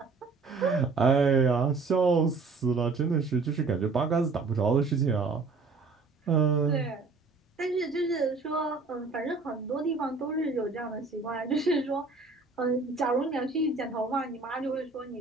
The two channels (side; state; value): left; quieter; 4.2 dB